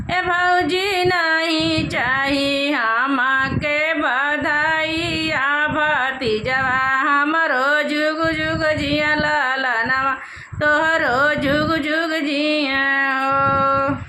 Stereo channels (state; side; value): identical; both; correlation 1.00